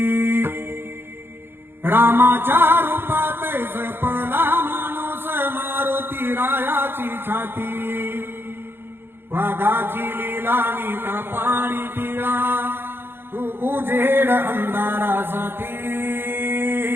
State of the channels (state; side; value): late; left; 0.10 ms